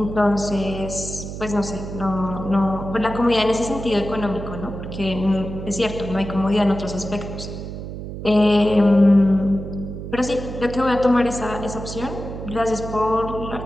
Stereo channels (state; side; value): noise; right; hum, 8 dB below the sound